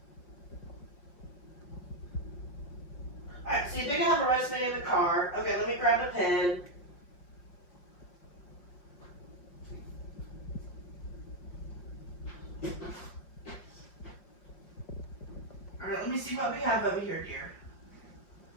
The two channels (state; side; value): late; right; 5.6 ms